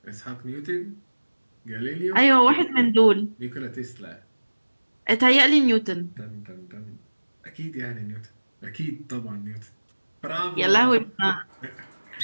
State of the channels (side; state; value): both; inverted; correlation -1.00